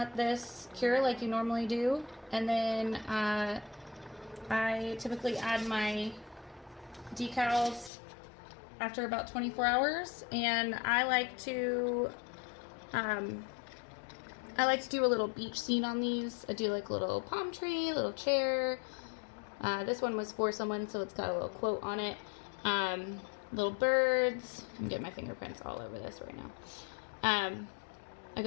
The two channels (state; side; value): drops out; right; at 7.9 s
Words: this cure like you normally do, and then I typically add my decals after about 24 hours, and I like to do a little beach scene on these. I do like a little palm tree, little chair. This one was for someone, so it's got a little quote on it. Little birds. I'm getting my fingerprints all over this right now. I